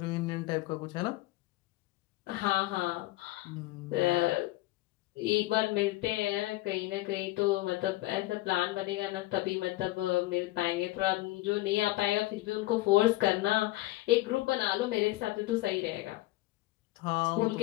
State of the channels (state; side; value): quieter; right; 18.4 dB